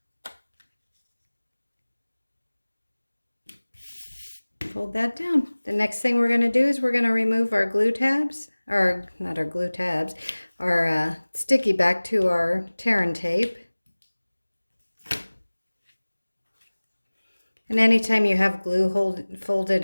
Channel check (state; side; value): inverted; both; correlation -1.00